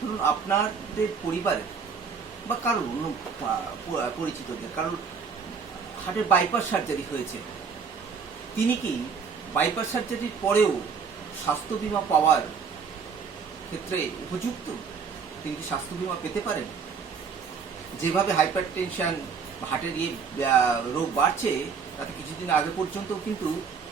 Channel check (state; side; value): quieter; left; 5.8 dB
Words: আপনাদের পরিবারের বা কারোর অন্য পরিচিতদের কারোর হার্টের বাইপাস সার্জারি হয়েছে, তিনি কি বাইপাস সার্জারির পরেও স্বাস্থ্য বীমা পাওয়ার ক্ষেত্রে উপযুক্ত? তিনি কি স্বাস্থ্য বীমা পেতে পারেন? যেভাবে হাইপার টেনশন হার্টের রোগ বাড়ছে, তাতে কিছুদিন আগে পর্যন্ত কিন্তু